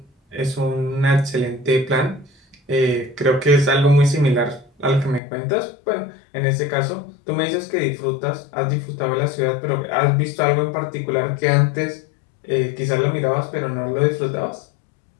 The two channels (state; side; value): drops out; right; at 5.2 s